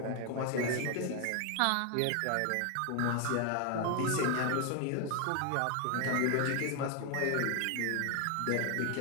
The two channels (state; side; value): different; both; correlation 0.01